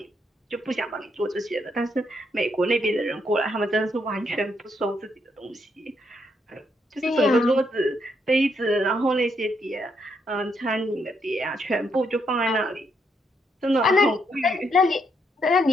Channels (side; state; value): both; normal; correlation 0.76